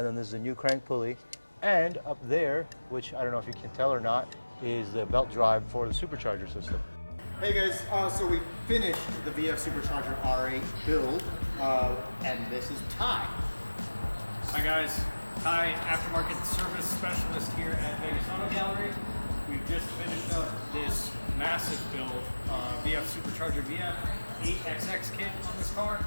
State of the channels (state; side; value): inverted; both; correlation -1.00